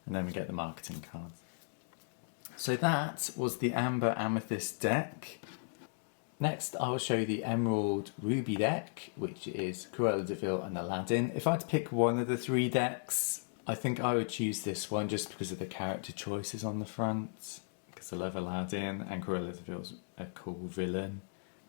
And then we get the marketing cards. So that was the Amber Amethyst deck. Next I will show you the Emerald Ruby deck, which is Cruella de Vil and Aladdin. If I had to pick one of the three decks, I think I would choose this one just because of the character choices on the front. Because I love Aladdin and Cruella de Vil's a cool villain.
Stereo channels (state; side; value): silent; right; digital silence